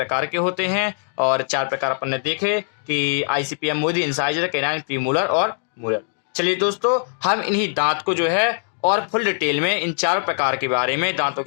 के होते हैं, और 4 प्रकार अपन ने देखे कि ICPM Modi, incisor, canine, premolar और मोलर। चलिए दोस्तों हम इन्हीं दांत को जो है और फुल डिटेल में इन 4 प्रकार के बारे में, दांतों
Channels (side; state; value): right; silent; digital silence